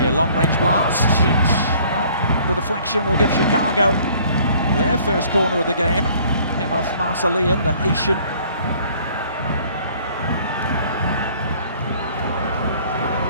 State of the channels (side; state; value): both; inverted; correlation -0.56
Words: a long-range blast. Well, the deflection will give Chicago their first corner of the game. Came off Marcellian, the Haitian.